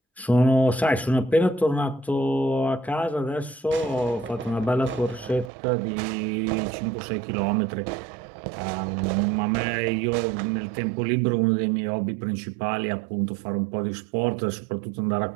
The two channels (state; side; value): drops out; left; at 5.5 s